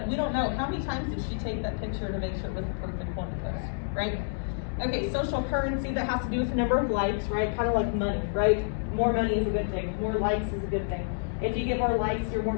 we don't know how many times did she take that picture to make sure it was the perfect one to post, right? Okay, social currency, that has to do with the number of likes, right? Kind of like money, right? More money is a good thing. More likes is a good thing. If you get more likes, you're more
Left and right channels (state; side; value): silent; right; digital silence